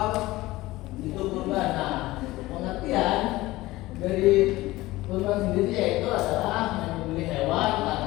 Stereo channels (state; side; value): quieter; right; 18.5 dB